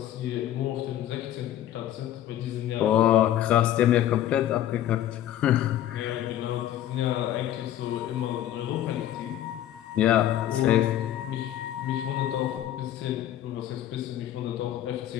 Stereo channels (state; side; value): quieter; right; 12.1 dB